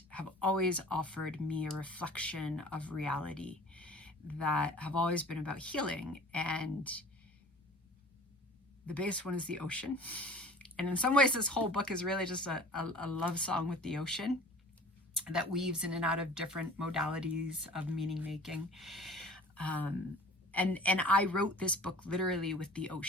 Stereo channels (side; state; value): both; normal; correlation 0.45